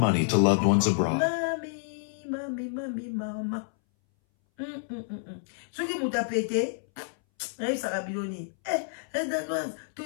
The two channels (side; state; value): right; silent; 59 dB below the other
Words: to loved ones abroad. Mama. Soki muta pete, na yisaka biloni. Danoise,